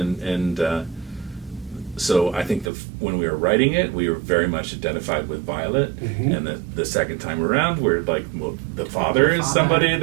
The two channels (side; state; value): left; drops out; at 2.7 s